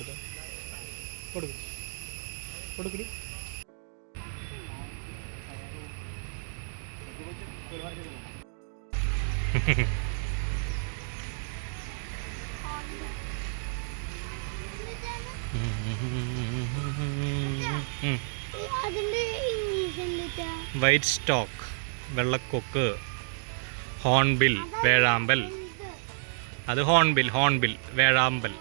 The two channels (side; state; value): left; silent; digital silence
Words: കൊടുക്കടി. വൈറ്റ് സ്റ്റോക്ക്, വെള്ളക്കൊക്ക്, ഹോൺബിൽ, വേഴാമ്പൽ. അത് ഹോൺബിൽ വേഴാമ്പൽ.